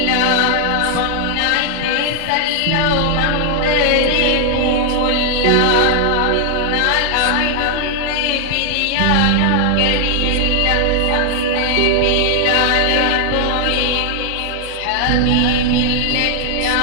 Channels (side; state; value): both; different; correlation 0.00